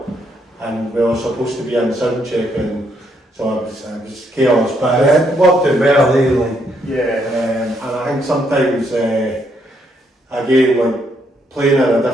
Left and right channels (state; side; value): normal; both; correlation 0.74